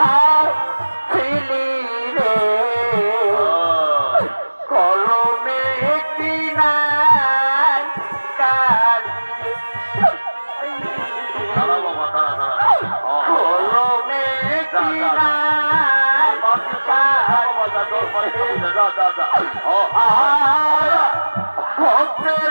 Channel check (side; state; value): both; inverted; correlation -1.00